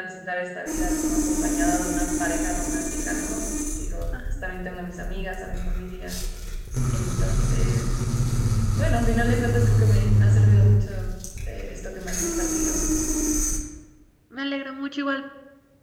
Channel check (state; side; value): identical; both; correlation 1.00